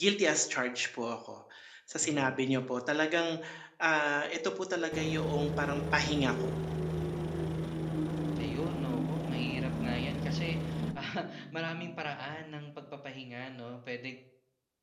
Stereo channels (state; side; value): identical; both; correlation 1.00